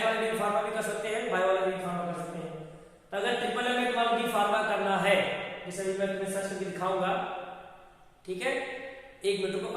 वाले बी फार्मा भी कर सकते हैं, बायो वाले बी फार्मा कर सकते हैं। तो अगर ट्रिपल एम में तुम्हारा बी फार्मा करना है, जैसे अभी मैं तुम्हें सर्च करके दिखाऊंगा, ठीक है, एक मिनट को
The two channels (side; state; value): both; identical; correlation 1.00